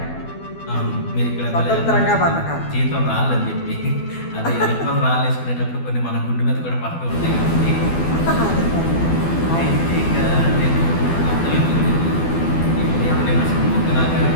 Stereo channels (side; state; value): right; late; 12 ms